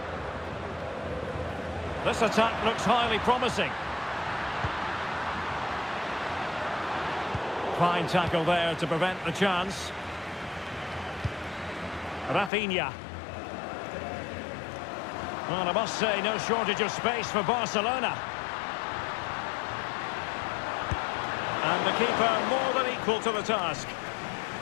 This attack looks highly promising. Fine tackle there to prevent the chance. Rafinha. Well, I must say, no shortage of space for Barcelona. And the keeper more than equal to the task.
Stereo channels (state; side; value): drops out; right; at 12.5 s